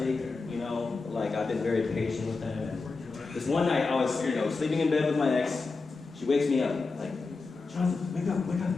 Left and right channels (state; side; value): quieter; right; 4.0 dB